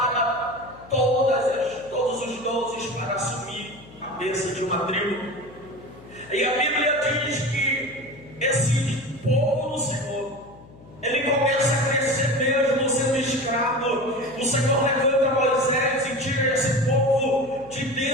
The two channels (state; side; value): noise; left; hum, 22 dB below the sound